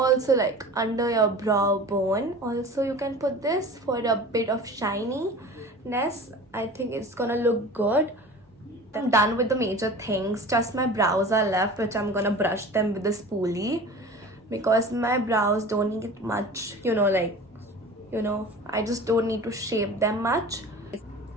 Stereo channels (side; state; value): both; normal; correlation 0.38